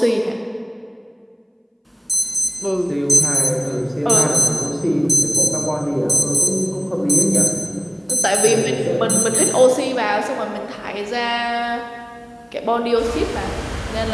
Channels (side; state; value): both; identical; correlation 1.00